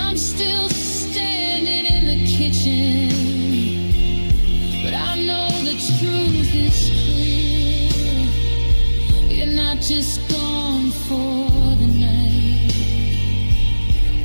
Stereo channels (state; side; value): inverted; both; correlation -1.00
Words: still standing in the kitchen, but I know the truth is clear. You're not just gone for the night,